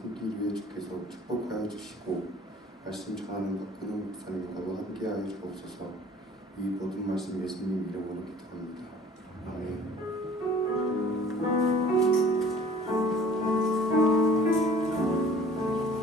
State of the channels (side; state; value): both; normal; correlation 0.50